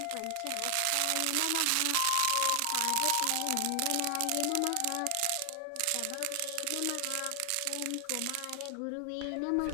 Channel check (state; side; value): different; both; correlation 0.00